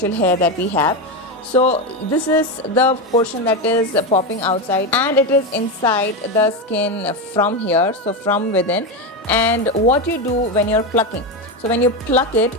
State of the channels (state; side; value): normal; both; correlation 0.13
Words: hair that we have. So this is the portion that is popping outside, and it is inside the skin from here, so from within. And what you do when you're plucking, so when you pluck